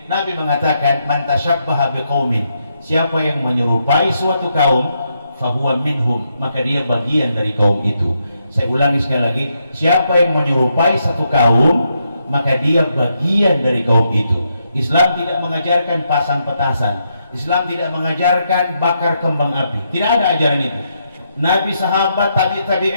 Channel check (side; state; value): both; inverted; correlation -0.80